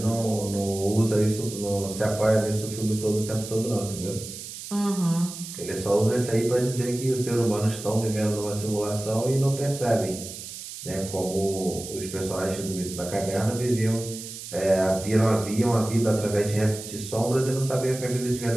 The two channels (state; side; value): noise; right; hiss, 11 dB below the sound